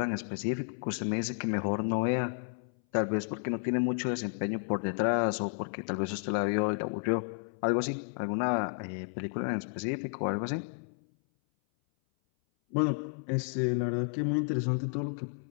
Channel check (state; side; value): silent; right; 57 dB below the other